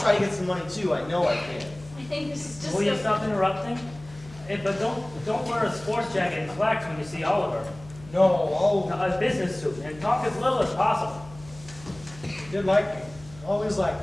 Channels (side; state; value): left; noise; hum, 19 dB below the sound